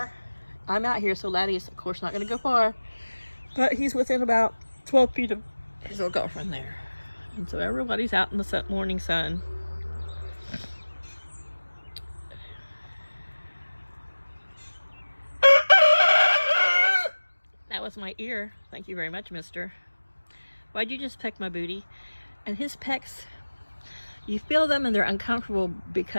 I'm out here, so Laddie is, of course, not going to go far. But he's within about 12 feet of his little girlfriend there. And so everybody's out in the morning sun. That was my ear. Thank you very much, mister. Why'd you just peck my booty? And his pecks, you feel them and they're uncomfortable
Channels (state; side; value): inverted; both; correlation -1.00